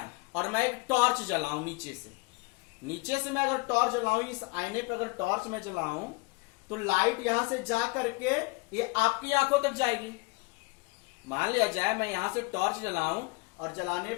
और मैं एक टॉर्च जलाऊं नीचे से मैं अगर टॉर्च जलाऊं, इस आईने पे अगर टॉर्च में जलाऊं, तो लाइट यहां से जा करके ये आपकी आंखों तक जाएगी। मान लिया जाए मैं यहां से टॉर्च जलाऊं और जलाने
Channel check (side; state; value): right; quieter; 26.7 dB